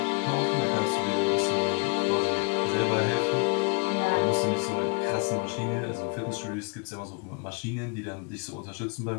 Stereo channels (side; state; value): right; quieter; 31.1 dB